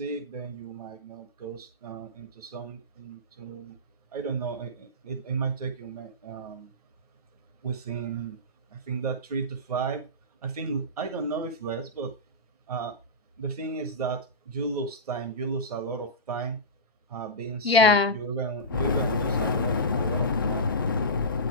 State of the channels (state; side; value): normal; both; correlation -0.18